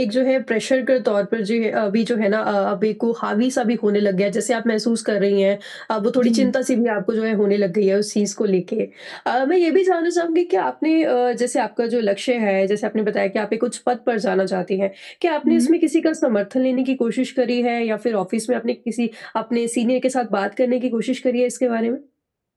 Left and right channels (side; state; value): both; identical; correlation 1.00